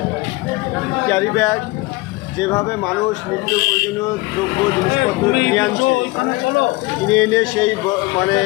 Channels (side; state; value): right; quieter; 21.9 dB